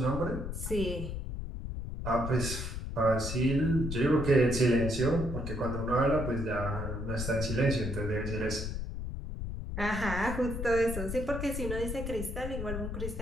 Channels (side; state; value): left; noise; rumble, 5 dB below the sound